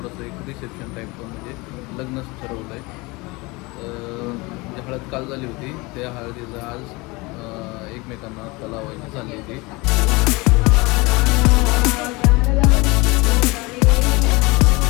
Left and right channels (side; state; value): right; quieter; 24.6 dB